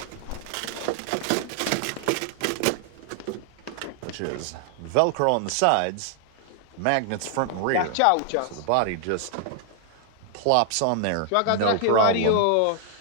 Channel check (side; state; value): both; different; correlation 0.00